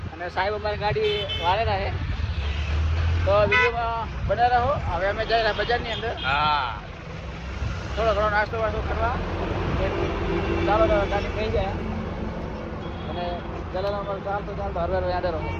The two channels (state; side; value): identical; both; correlation 1.00